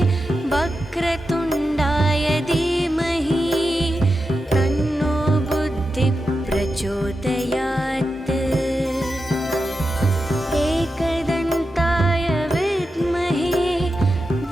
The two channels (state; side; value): normal; both; correlation 0.90